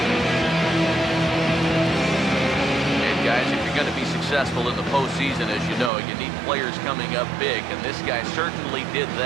Successful in the postseason, as you know, you need players coming up big, and this guy certainly did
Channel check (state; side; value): drops out; left; at 5.9 s